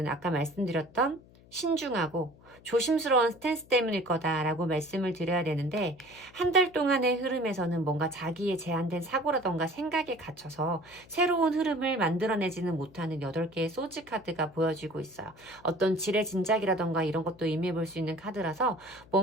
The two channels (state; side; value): noise; left; hum, 25 dB below the sound